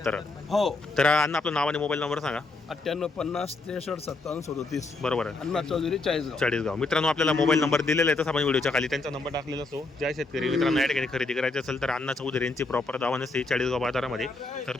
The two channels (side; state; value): right; quieter; 3.4 dB